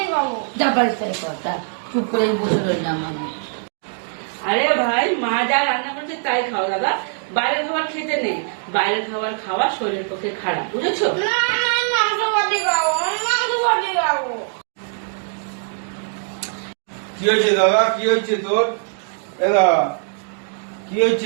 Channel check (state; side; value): silent; left; digital silence